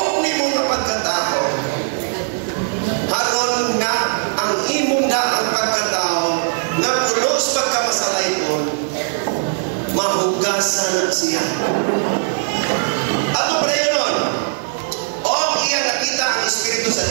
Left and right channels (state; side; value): silent; left; digital silence